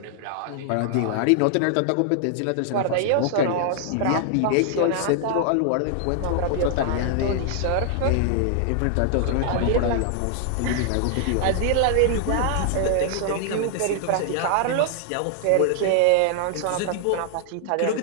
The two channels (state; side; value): different; both; correlation 0.00